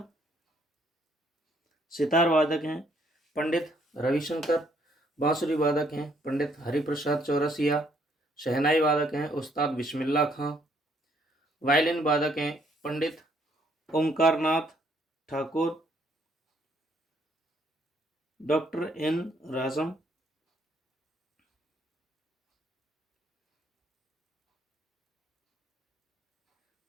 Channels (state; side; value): normal; both; correlation 0.68